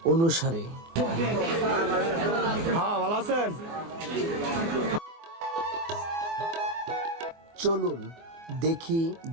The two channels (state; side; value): late; left; 24 ms